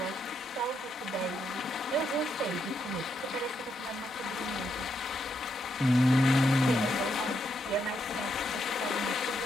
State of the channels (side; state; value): both; normal; correlation 0.79